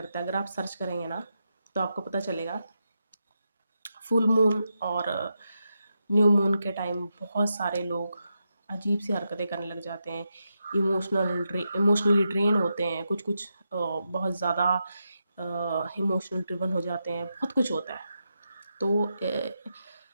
है, अगर आप सर्च करेंगे ना तो आपको पता चलेगा। फुल मून और न्यू मून के टाइम बहुत सारे लोग अजीब सी हरकतें करने लग जाते हैं, इमोशनली ड्रेन होते हैं, कुछ कुछ बहुत ज़्यादा इमोशनल ड्रिवन हो जाते हैं, बहुत कुछ होता है। तो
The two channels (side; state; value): both; inverted; correlation -0.86